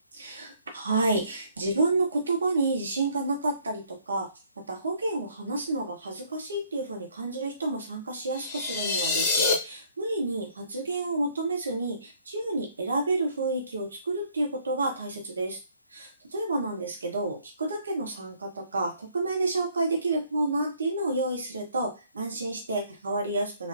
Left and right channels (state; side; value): inverted; both; correlation -0.63